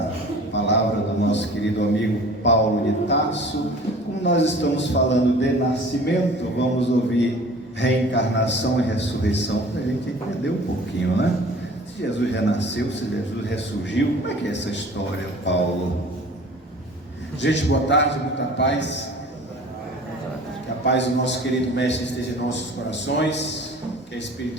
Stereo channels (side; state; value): both; normal; correlation 0.46